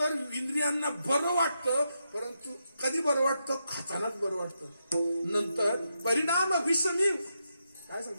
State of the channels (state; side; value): inverted; both; correlation -0.84